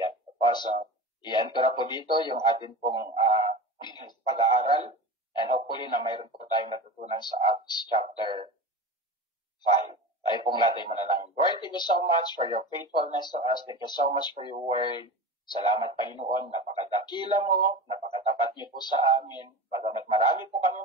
So, i-end ko na po dito yung ating pong pag-aaral and hopefully na mayroon po tayong natutunan sa Acts chapter 5. Tayo pong lahat ay manalangin. Lord, thank you so much for your faithfulness to us. Thank you so much for your word. Salamat, Panginoon. Napakadakila mo, napakatapat niyo po sa amin. Bagamat marami po kami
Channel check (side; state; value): both; normal; correlation 0.30